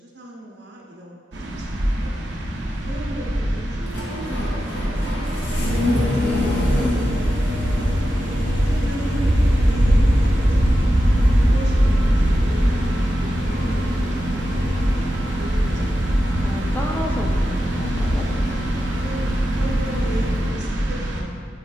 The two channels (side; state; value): both; normal; correlation 0.91